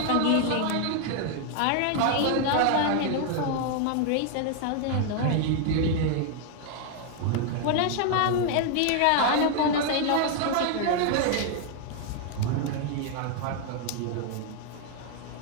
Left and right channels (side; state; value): both; different; correlation 0.00